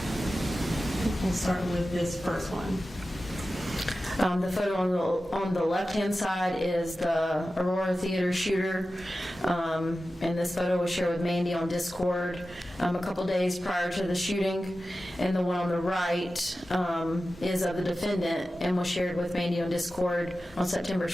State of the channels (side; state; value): both; normal; correlation 0.94